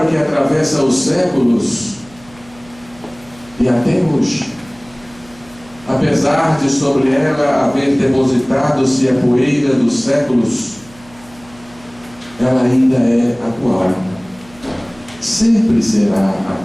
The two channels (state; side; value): noise; right; hum, 24 dB below the sound